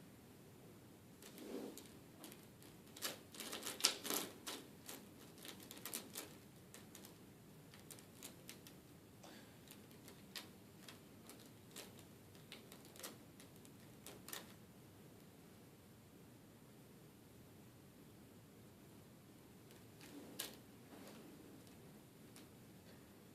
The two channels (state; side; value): identical; both; correlation 1.00